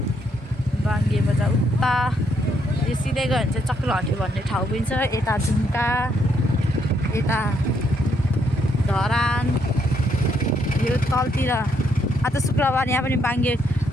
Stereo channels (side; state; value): both; normal; correlation 0.73